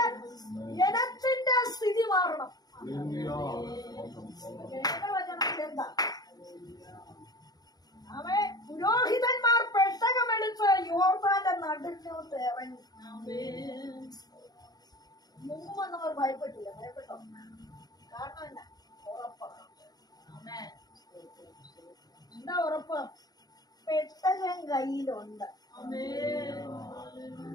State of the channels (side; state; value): right; late; 0.19 ms